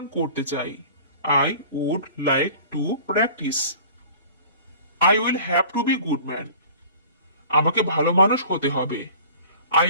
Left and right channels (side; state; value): both; inverted; correlation -0.45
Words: করতে চাই। I would like to practice. I will have to be good man. আমাকে ভালো মানুষ হতে হবে। I